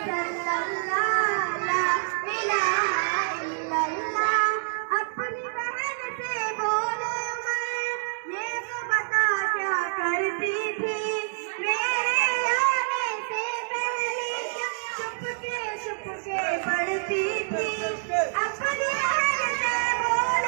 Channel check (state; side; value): silent; left; digital silence